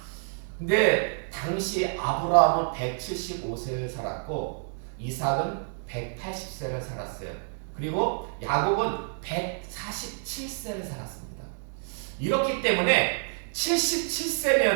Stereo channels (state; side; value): silent; left; digital silence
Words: 근데 당시 아브라함은 175세를 살았고 이삭은 180세를 살았어요. 그리고 야곱은 147세를 살았습니다. 이렇기 때문에